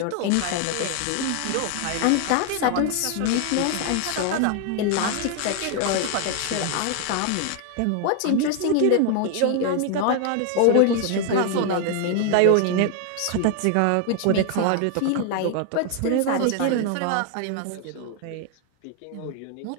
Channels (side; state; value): both; different; correlation 0.00